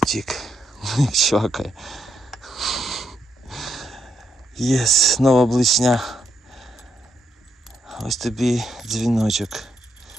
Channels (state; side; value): normal; both; correlation 0.79